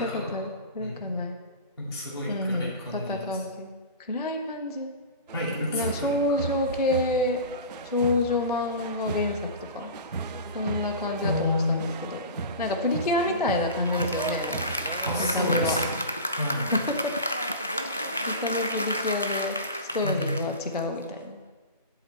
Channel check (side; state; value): both; inverted; correlation -0.32